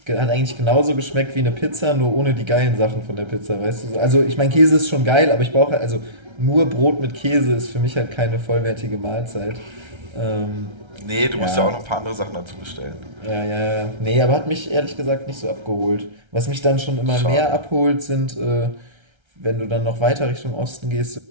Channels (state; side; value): late; left; 1.3 ms